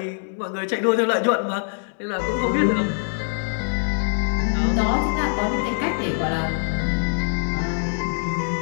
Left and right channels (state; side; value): silent; right; 63 dB below the other